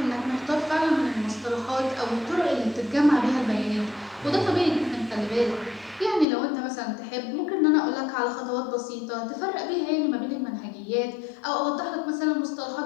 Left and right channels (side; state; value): right; drops out; at 6.2 s